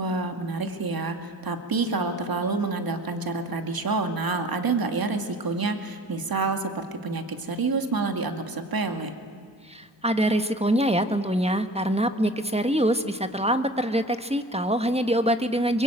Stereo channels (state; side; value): normal; both; correlation 0.43